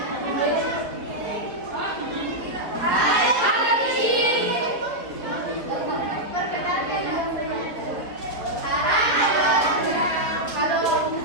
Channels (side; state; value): left; late; 4.2 ms